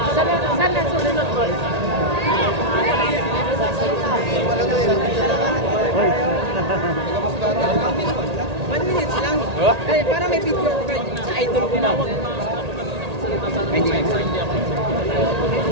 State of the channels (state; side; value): late; left; 1.8 ms